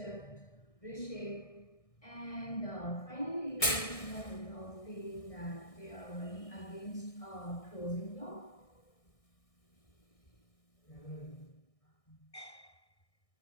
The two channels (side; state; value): right; late; 1.6 ms